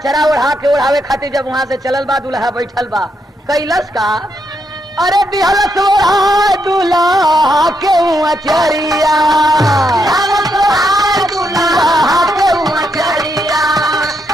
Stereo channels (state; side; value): normal; both; correlation 0.79